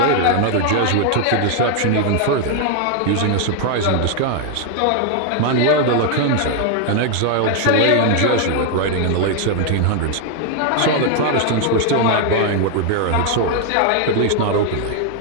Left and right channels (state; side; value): different; both; correlation 0.00